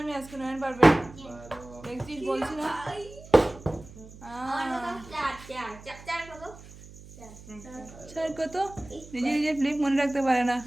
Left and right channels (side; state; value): right; noise; hum, 18 dB below the sound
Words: আমি আজকে নয়ন পারবে দেখছিস বলছি না স্যার কত নিজে নিজে ফ্লিপ মনে রাখতে পারে না